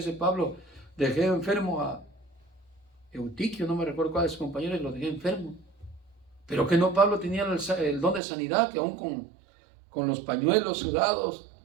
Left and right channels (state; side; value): drops out; left; at 8.2 s